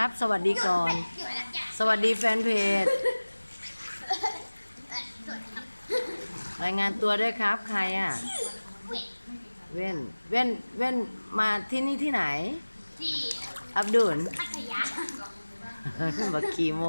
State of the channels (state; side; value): inverted; both; correlation -1.00